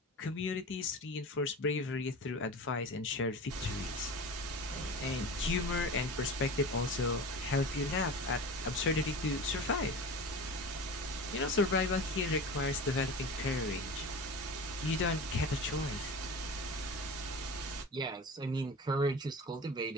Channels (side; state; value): both; normal; correlation 0.32